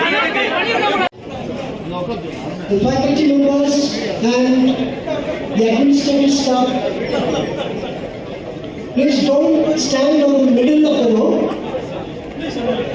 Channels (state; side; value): identical; both; correlation 1.00